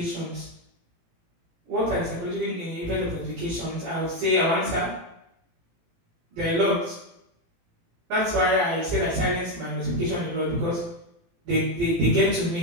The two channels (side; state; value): left; late; 18 ms